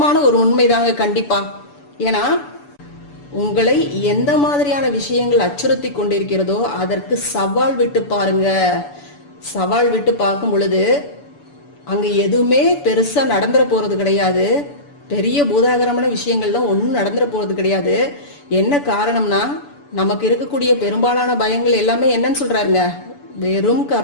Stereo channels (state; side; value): late; right; 6.9 ms